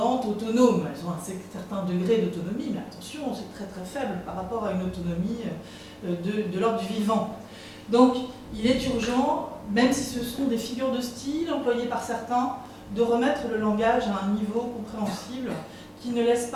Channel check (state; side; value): identical; both; correlation 1.00